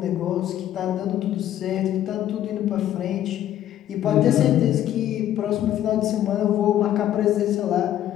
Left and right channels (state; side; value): quieter; right; 11.8 dB